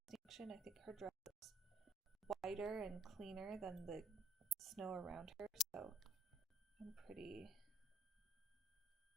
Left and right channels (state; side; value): normal; both; correlation 0.62